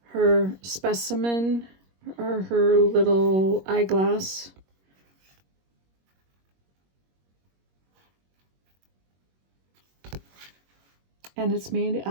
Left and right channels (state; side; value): late; left; 21 ms